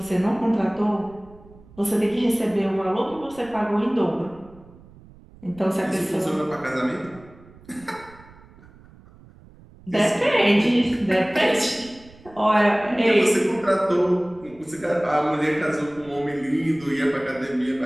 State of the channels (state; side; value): noise; right; rumble, 23 dB below the sound